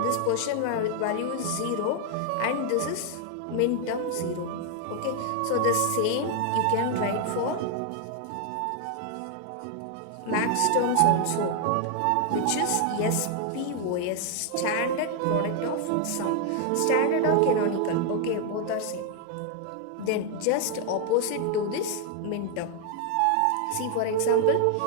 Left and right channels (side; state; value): both; different; correlation 0.00